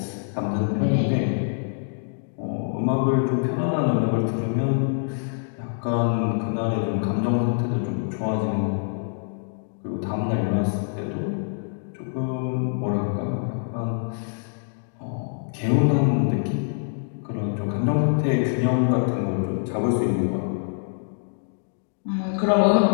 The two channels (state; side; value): silent; right; digital silence